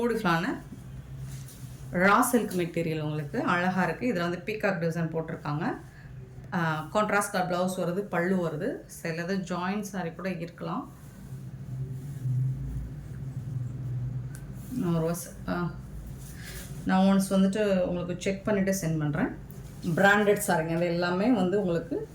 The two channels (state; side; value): identical; both; correlation 1.00